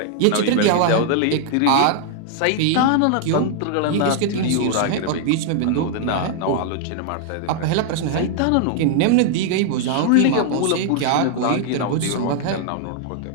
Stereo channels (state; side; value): different; both; correlation 0.00